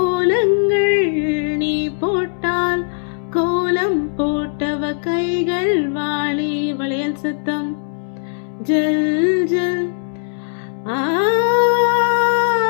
நீ போட்டால், கோலம் போட்டவ கைகள் வாடி. வளையல் சத்தம் ஜல் ஜல். ஆ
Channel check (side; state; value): right; silent; digital silence